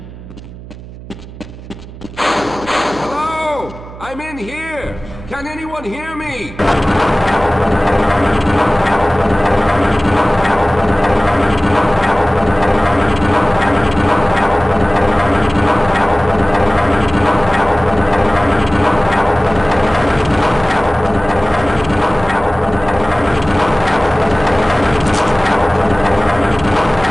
Hello? I'm in here. Can anyone hear me?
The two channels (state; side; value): noise; right; hum, 16 dB below the sound